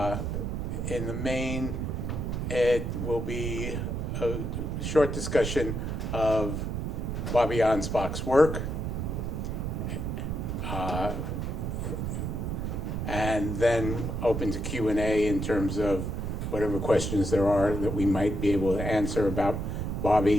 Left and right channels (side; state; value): right; noise; rumble, 2 dB below the sound